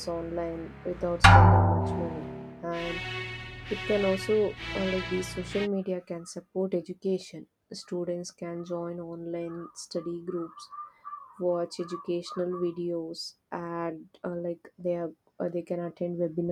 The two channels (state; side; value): identical; both; correlation 1.00